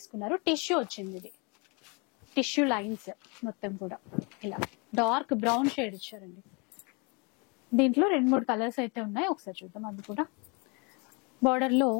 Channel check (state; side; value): quieter; right; 31.8 dB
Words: టిష్యూ వచ్చింది. ఇది టిష్యూ లైన్స్ మొత్తం కూడా ఇలా డార్క్ బ్రౌన్ షేడ్ ఇచ్చారండి. దీంట్లో 2-3 కలర్స్ అయితే ఉన్నాయి. ఒకసారి చూద్దాం. అది కూడా బార్డర్ లో